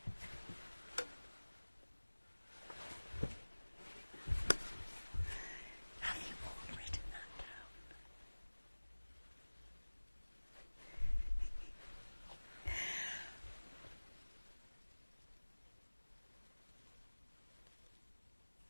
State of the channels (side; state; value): both; inverted; correlation -1.00